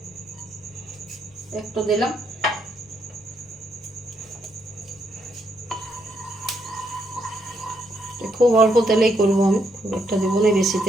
একটু দিলাম, খুব অল্প তেলেই করবো আমি, খুব একটা দেবো না বেশি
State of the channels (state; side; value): normal; both; correlation 0.76